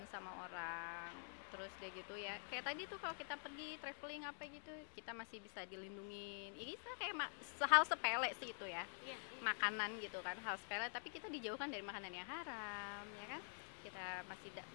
sama orang. Terus deh gitu ya. Kayak tadi tuh kalau kita pergi traveling apa gitu, kita masih bisa dilindungin. Ini kayak hal sepele sih itu ya. Iya. Makanan gitu kan, hal sepele tapi kita dijauhkan dari makanan yang haram, ya kan?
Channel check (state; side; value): silent; right; digital silence